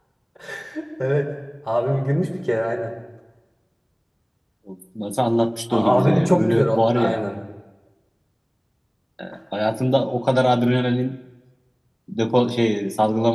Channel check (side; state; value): both; identical; correlation 1.00